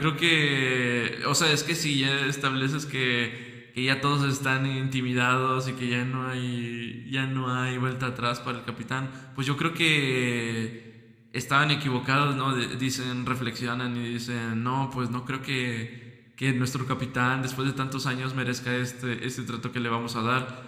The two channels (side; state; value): both; identical; correlation 1.00